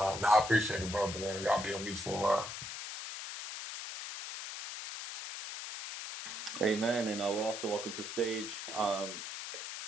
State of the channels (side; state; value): left; noise; hiss, 7 dB below the sound